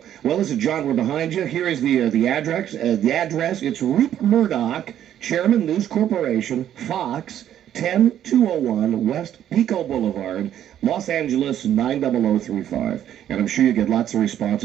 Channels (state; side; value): quieter; left; 10.8 dB